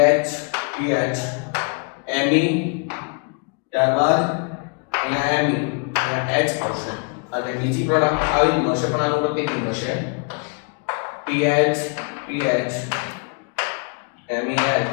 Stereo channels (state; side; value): quieter; right; 38.1 dB